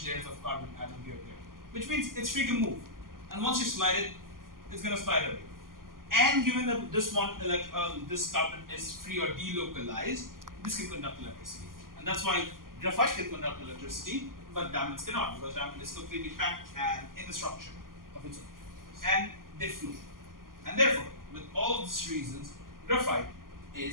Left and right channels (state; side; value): late; left; 0.91 ms